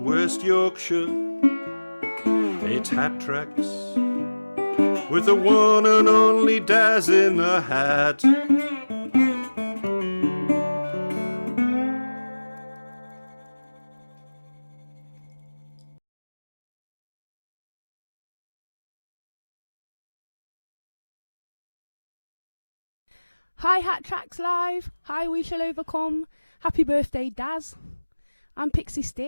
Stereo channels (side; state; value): both; inverted; correlation -1.00